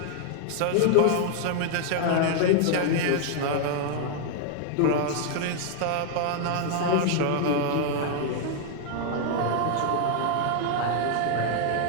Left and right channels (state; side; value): different; both; correlation 0.00